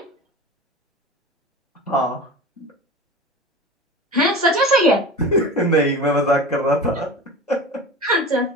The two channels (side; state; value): both; normal; correlation 0.33